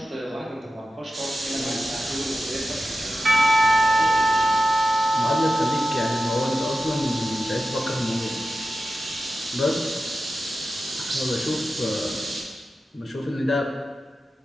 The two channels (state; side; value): normal; both; correlation 0.93